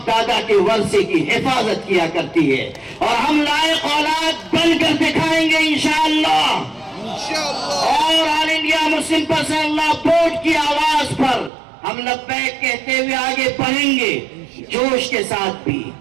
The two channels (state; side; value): drops out; left; at 11.5 s